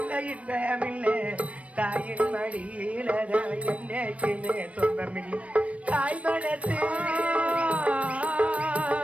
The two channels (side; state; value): left; late; 0.064 ms